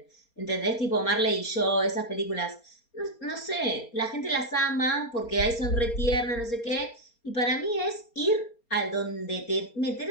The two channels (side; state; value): right; late; 4.3 ms